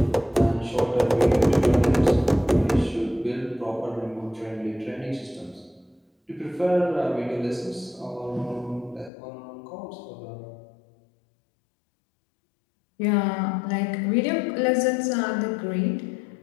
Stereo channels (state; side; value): drops out; right; at 9.1 s